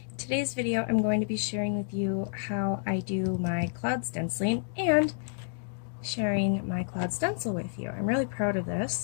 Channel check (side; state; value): right; silent; digital silence